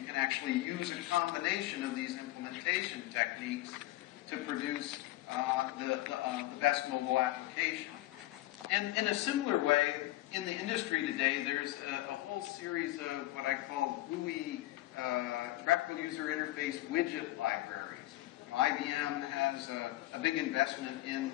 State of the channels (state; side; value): quieter; right; 17.0 dB